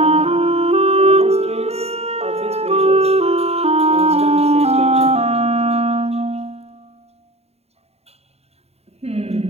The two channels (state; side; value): late; left; 0.30 ms